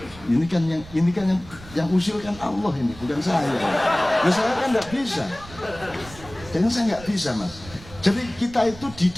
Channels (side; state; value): right; noise; rumble, 18 dB below the sound